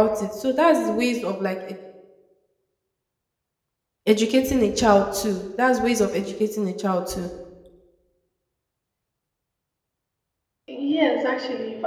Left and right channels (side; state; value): both; identical; correlation 1.00